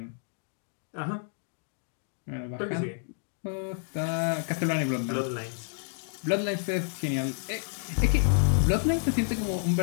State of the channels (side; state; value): right; silent; digital silence